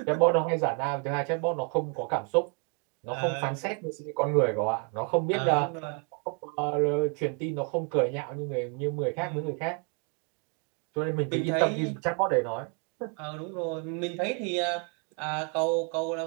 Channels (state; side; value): quieter; left; 37.2 dB